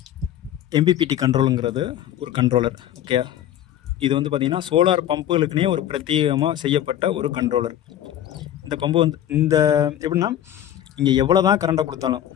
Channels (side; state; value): right; quieter; 11.4 dB